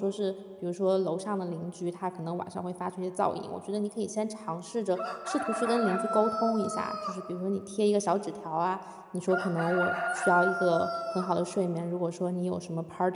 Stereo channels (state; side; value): identical; both; correlation 1.00